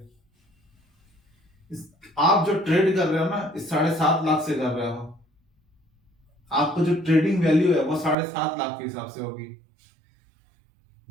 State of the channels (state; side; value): drops out; left; at 8.2 s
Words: आप जो ट्रेड कर रहे हो ना, इस 7.5 लाख से कर रहे हो, आपको जो ट्रेडिंग वैल्यू है वो 7.5 लाख के हिसाब से होगी।